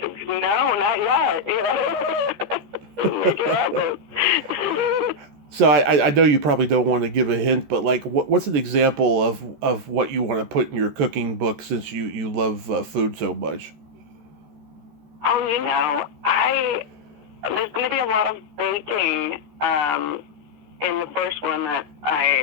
not yet. Make it happen. So I know you probably don't want to give a hint, but like, what's an example of what you want to put in your cooking book since you love food so much? Oh, there's going to be a lot of baking in the first one that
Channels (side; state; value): left; late; 13 ms